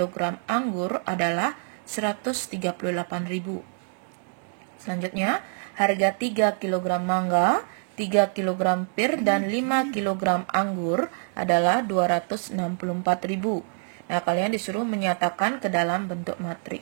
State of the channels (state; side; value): silent; left; 58 dB below the other